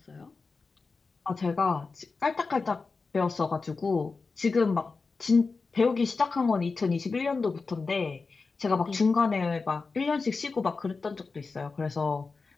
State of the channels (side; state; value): right; quieter; 4.3 dB